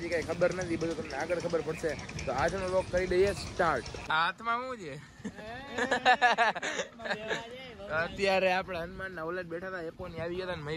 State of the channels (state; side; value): identical; both; correlation 1.00